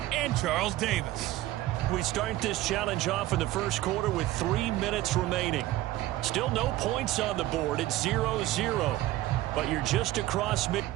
and Charles Davis. We start this challenge off in the first quarter with 3 minutes remaining. Still no points on the board. It's 0-0. But you're just across mid...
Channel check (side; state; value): left; quieter; 15.9 dB